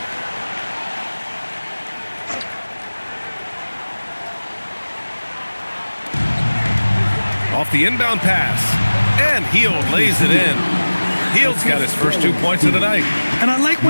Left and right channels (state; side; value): inverted; both; correlation -1.00